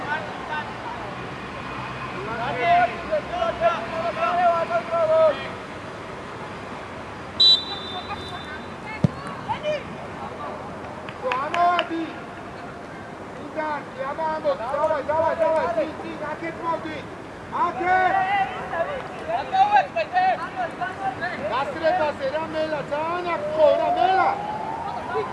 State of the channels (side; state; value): both; identical; correlation 1.00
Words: Давай, ты, Акет молди! Акет! გასრებაზე რა მელა, ძალიან აქ რა მელა!